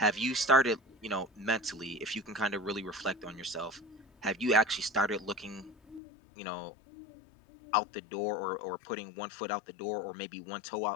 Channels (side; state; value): right; drops out; at 6.0 s